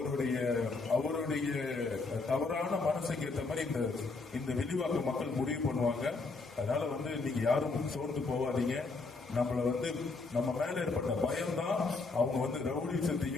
அவருடைய தவறான மனசுக்கு ஏற்ற மாதிரி இந்த விரிவாக்க மக்கள் முடிவு பண்ணுவாங்க. அதனால வந்து நீங்க யாரும் சோர்ந்து போவாதீங்க. நம்ம மேல ஏற்பட்ட பயம்தான் அவங்க வந்து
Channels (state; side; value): quieter; right; 3.9 dB